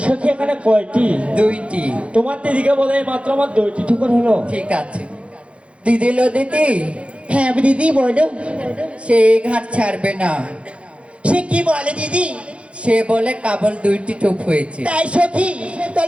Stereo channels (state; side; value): late; left; 0.061 ms